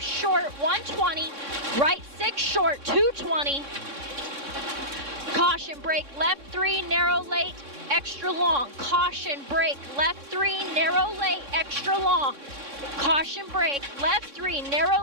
short 120. Right 6 short 220. Caution brake left 3 narrow late extra long. Caution brake left 3 narrow late extra long. Caution brake left 3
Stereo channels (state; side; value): late; left; 3.6 ms